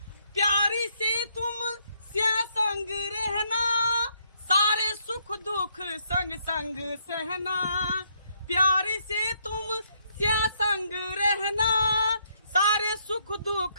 प्यारी से तुम से संग रहना, सारे सुख दुख संग संग सहना। प्यारी से तुम से संग रहना, सारे सुख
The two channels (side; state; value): both; inverted; correlation -0.72